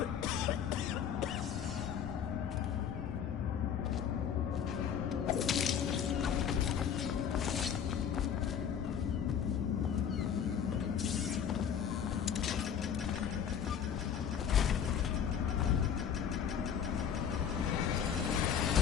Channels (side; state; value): right; quieter; 8.2 dB